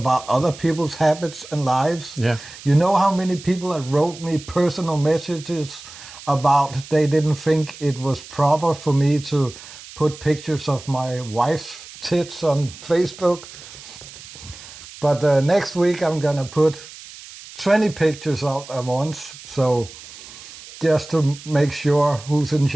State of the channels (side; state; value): right; noise; hiss, 17 dB below the sound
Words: other people's habits and lives. Yeah. You know how many people that wrote me personal messages about they didn't think it was proper for me to put pictures of my wife's tits on Facebook? But next week I'm gonna put 20 pictures out at once, so just to make sure who's in